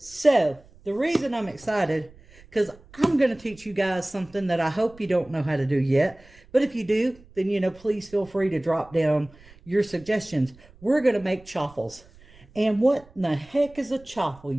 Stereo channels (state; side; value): noise; right; rumble, 25 dB below the sound